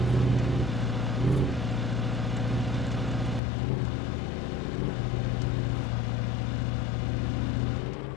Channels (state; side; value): drops out; right; at 3.4 s